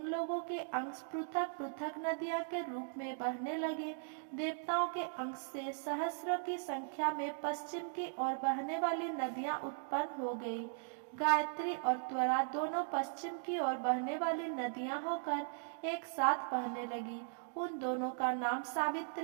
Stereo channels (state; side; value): silent; left; digital silence